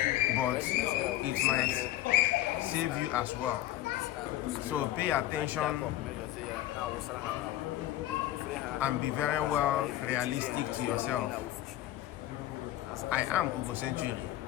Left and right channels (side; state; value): right; quieter; 14.2 dB